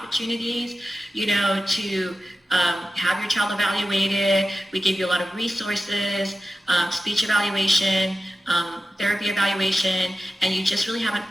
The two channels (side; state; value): both; normal; correlation 0.93